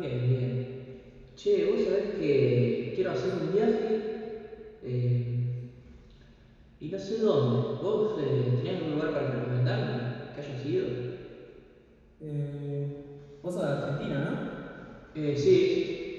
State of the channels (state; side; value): identical; both; correlation 1.00